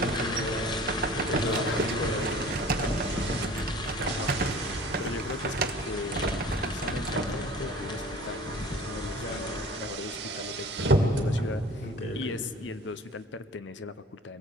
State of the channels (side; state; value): both; normal; correlation 0.45